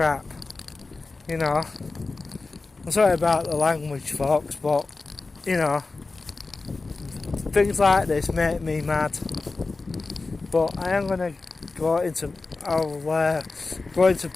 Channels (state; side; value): quieter; right; 3.7 dB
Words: You know, I'm sorry about the language, folks, but you know, things like this make me mad. But I am going to I'll go into